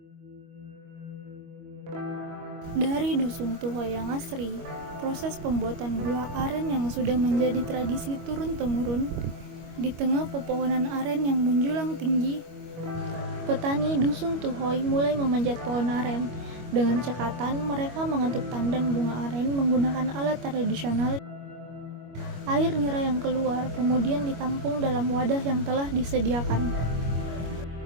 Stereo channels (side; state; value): left; late; 25 ms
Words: Dari dusun Tuhoy yang asri, proses pembuatan gula aren yang sudah menjadi tradisi turun-temurun di tengah pepohonan aren yang menjulang tinggi. Petani dusun Tuhoy mulai memanjat pohon aren. Dengan cekatan, mereka mengetuk tandan bunga aren menggunakan alat tradisional. Air nira yang keluar kemudian ditampung dalam wadah yang telah disediakan.